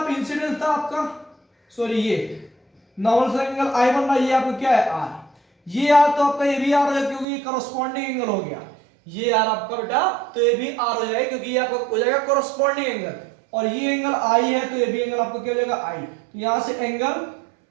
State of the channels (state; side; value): drops out; left; at 7.2 s